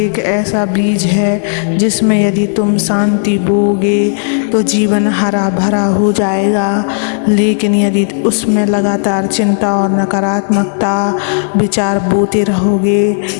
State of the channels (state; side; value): silent; right; digital silence